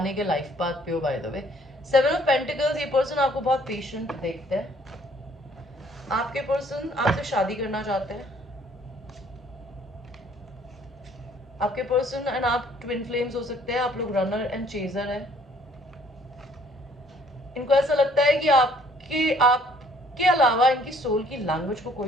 के लाइफ पाथ पे हो bye the way. Seven of pentacles, ये पर्सन आपको बहुत पेशेंट देखते हैं। आपके पर्सन आपसे शादी करना चाहते हैं। आपके पर्सन एंड आप ट्विन फ्लेम्स हो सकते हैं, आप लोग रनर एंड चेजर है। इनको ऐसा लगता है कि आपके अलावा इनकी सोल की लैंग्वेज को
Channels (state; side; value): normal; both; correlation 0.61